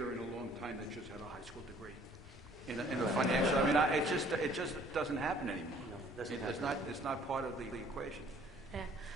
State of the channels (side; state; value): both; normal; correlation 0.57